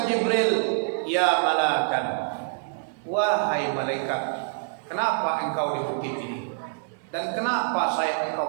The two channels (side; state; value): left; silent; digital silence